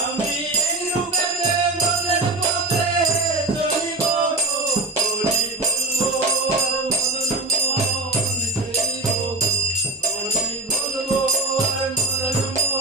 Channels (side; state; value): left; quieter; 3.0 dB